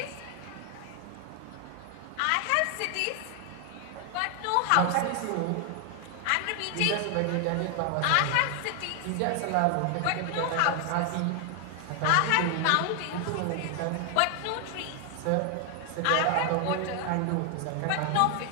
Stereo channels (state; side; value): different; both; correlation 0.00